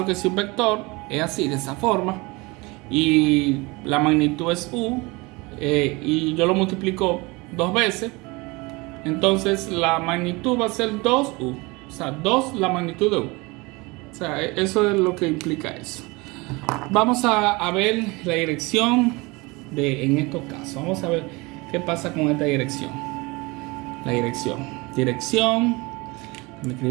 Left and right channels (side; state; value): left; quieter; 24.9 dB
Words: que si un vector es así, de esa forma, y la magnitud es u, y yo lo multiplico dos veces, entonces la magnitud va a ser 2u, o sea, 2 la magnitud de u. O sea, eso es lo que implica eso. Vamos a ver la dirección en estos casos. Vamos a ver qué pasa con esta dirección. La dirección. Dirección. Déjame